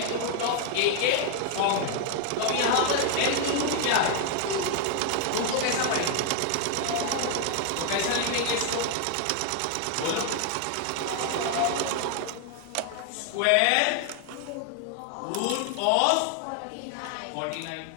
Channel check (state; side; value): different; both; correlation 0.00